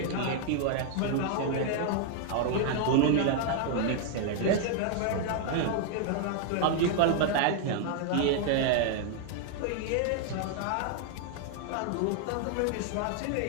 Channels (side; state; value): both; different; correlation 0.00